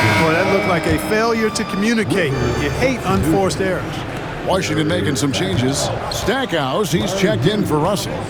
that looked like a failure to communicate. You hate unforced errors. Washington making some changes. Stackhouse, he's checked in for Russell.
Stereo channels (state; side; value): identical; both; correlation 1.00